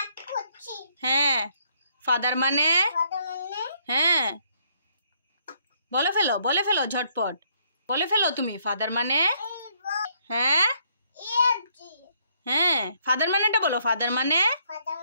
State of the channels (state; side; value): inverted; both; correlation -0.69